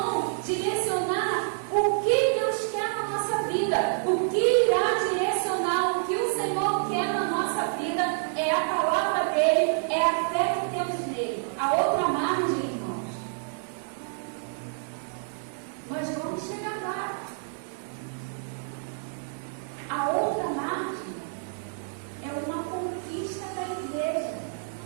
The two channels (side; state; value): left; silent; 59 dB below the other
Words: direcionar o que Deus quer na nossa vida. O que irá direcionar o que o Senhor quer na nossa vida é a palavra dele, é a fé que temos nele. A outra margem, irmãos, nós vamos chegar lá. A outra margem é uma conquista da igreja.